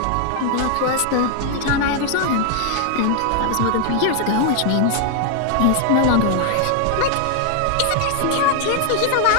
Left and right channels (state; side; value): different; both; correlation 0.00